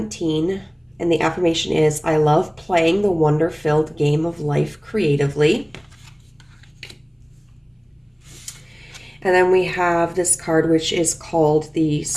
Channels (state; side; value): identical; both; correlation 1.00